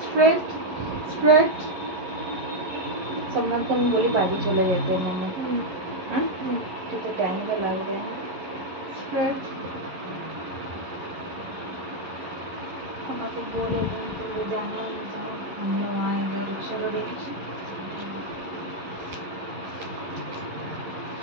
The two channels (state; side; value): late; left; 11 ms